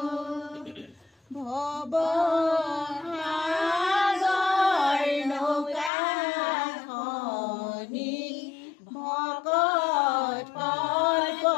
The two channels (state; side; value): drops out; right; at 5.9 s